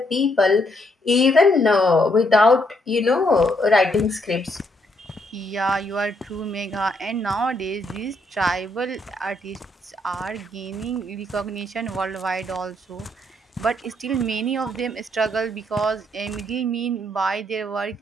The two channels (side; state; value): both; normal; correlation 0.73